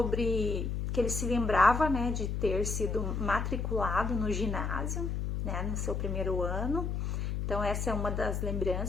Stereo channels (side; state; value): left; noise; hum, 1 dB below the sound